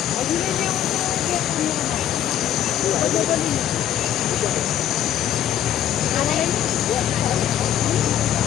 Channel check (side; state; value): right; quieter; 10.8 dB